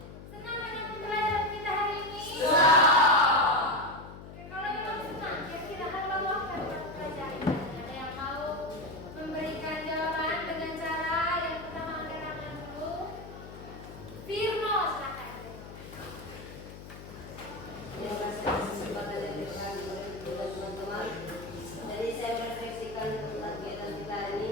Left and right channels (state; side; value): noise; left; hum, 14 dB below the sound